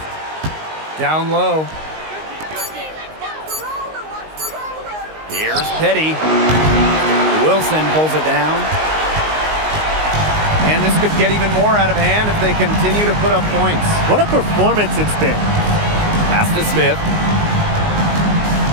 Down low. Here's Petty. Wilson pulls it down. And this could get even more out of hand if they continue to put up points. What a performance it's been. Pass to Smith.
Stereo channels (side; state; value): left; late; 19 ms